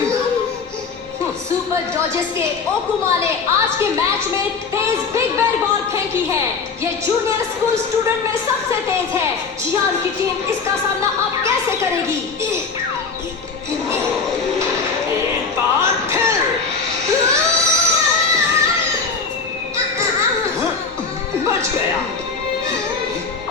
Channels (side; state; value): right; quieter; 4.9 dB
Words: सुपर डॉजर्स के ओकुमा ने आज के मैच में तेज बिग बेर बॉल फेंकी है। ये जूनियर स्कूल स्टूडेंट में सबसे तेज है। जियान की टीम इसका सामना अब कैसे करेगी? एक बार फिर बच गया।